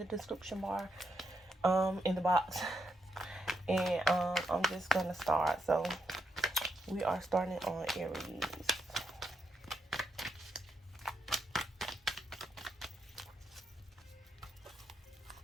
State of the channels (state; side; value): normal; both; correlation 0.81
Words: description bar, in the box. And I'm just going to start. So we are starting on Aries.